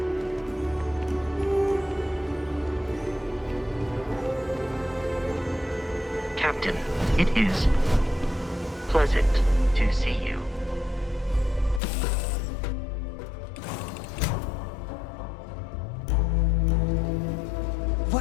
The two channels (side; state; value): right; drops out; at 11.8 s